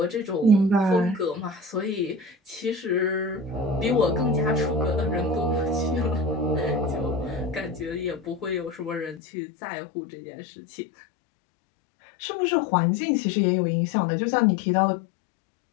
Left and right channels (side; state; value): right; drops out; at 9.2 s